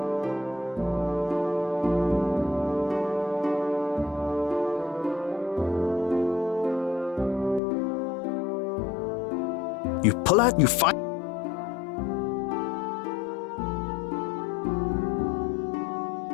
You pull out, you fight.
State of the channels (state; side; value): drops out; right; at 7.6 s